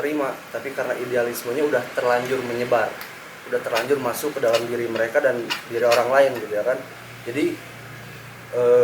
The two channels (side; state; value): both; identical; correlation 1.00